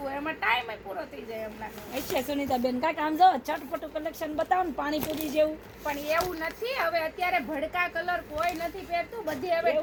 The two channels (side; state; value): both; identical; correlation 1.00